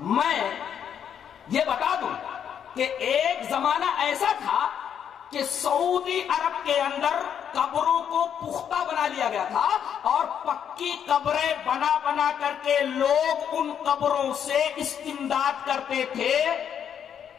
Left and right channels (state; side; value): quieter; right; 8.5 dB